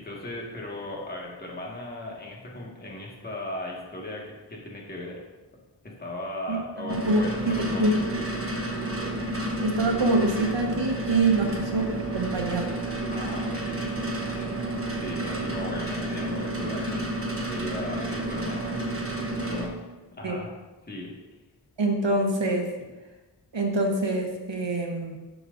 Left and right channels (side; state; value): both; normal; correlation 0.07